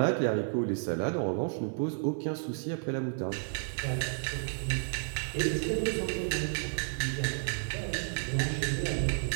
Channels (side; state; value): left; silent; digital silence